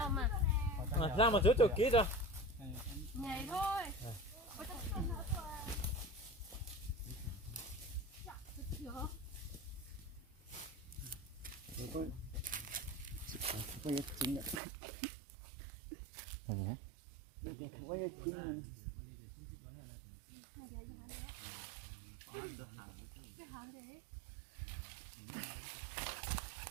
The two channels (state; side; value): drops out; left; at 14.6 s